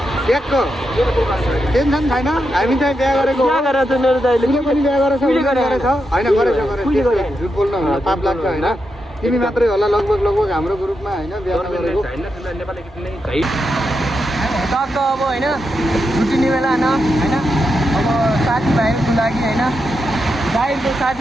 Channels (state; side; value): normal; both; correlation 0.85